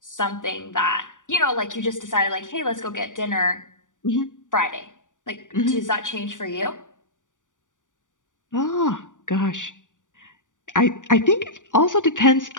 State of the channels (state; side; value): late; right; 0.87 ms